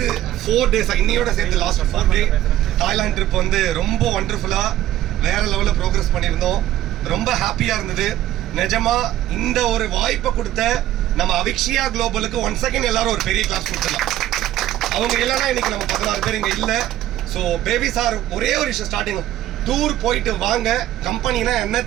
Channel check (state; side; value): quieter; left; 13.4 dB